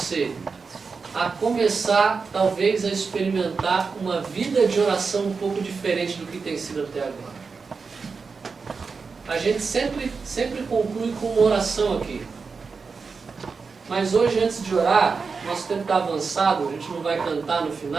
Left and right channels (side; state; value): left; quieter; 4.9 dB